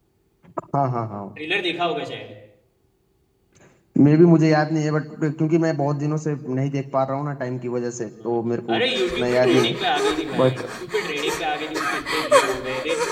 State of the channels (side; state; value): both; identical; correlation 1.00